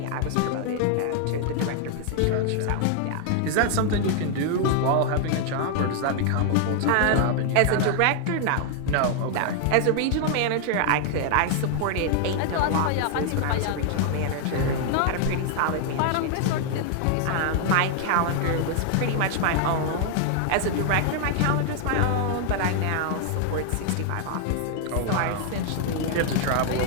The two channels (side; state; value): both; different; correlation 0.00